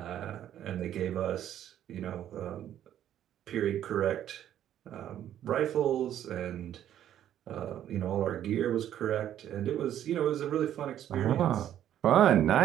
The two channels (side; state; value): left; quieter; 11.1 dB